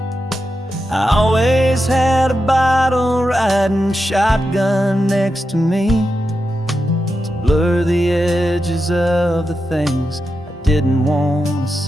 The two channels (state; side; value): normal; both; correlation 0.88